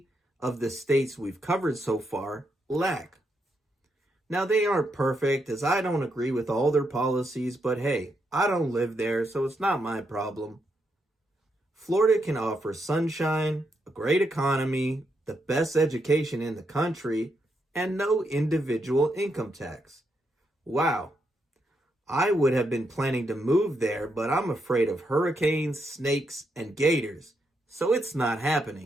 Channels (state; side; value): normal; both; correlation 0.80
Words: of the states we've covered so far lack. Now, they aren't perfect, as I don't agree with all their policies, but hey, I don't live there, so it's not my problem. Florida can offer sunshine, a great economy, the best education in the country, and no individual income tax. Wow. I would have been planning to move there, but I'm afraid of hurricanes, snakes, and gators, so it's not